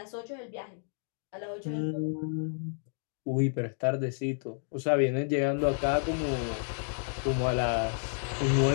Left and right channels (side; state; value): right; silent; 57 dB below the other